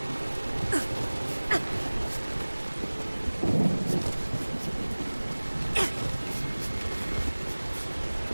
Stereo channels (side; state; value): both; inverted; correlation -1.00